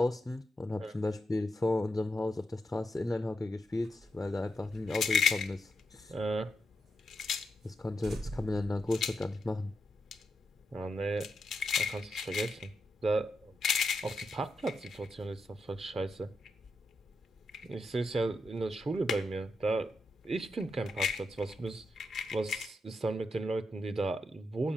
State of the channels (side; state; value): both; normal; correlation 0.85